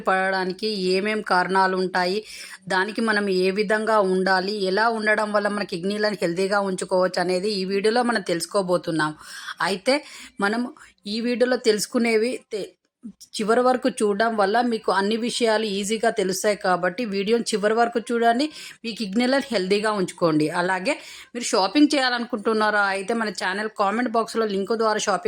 పడడానికి ఏమేం కారణాలు ఉంటాయి, దానికి మనం ఏ విధంగా ఉండాలి, ఎలా ఉండడం వల్ల మన కిడ్నీలను హెల్తీగా ఉంచుకోవచ్చు అనేది ఈ వీడియోలో మనం తెలుసుకోబోతున్నాం. అయితే మనం ఈ వీడియోలో తెలుసుకునేవి చివరి వరకు చూడడం వల్ల మీకు అన్ని విషయాలు ఈజీగా తెలుస్తాయి. కాబట్టి వీడియోని చివరి వరకు చూడండి, మీ కిడ్నీలను హెల్తీగా ఉంచుకోండి. అలాగే మీరు షాపింగ్ చేయాలనుకుంటున్నారా అయితే మన ఛానల్ కామెంట్ బాక్స్లో లింక్ ద్వారా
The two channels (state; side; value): identical; both; correlation 1.00